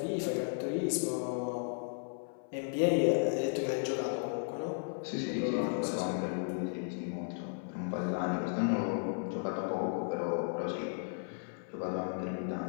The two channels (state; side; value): silent; right; 55 dB below the other